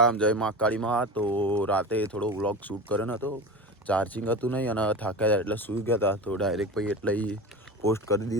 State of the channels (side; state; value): both; normal; correlation 0.29